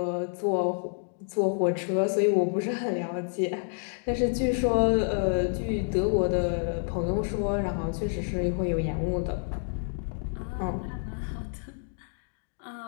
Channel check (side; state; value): right; silent; 59 dB below the other